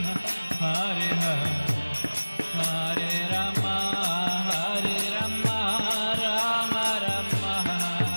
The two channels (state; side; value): inverted; both; correlation -1.00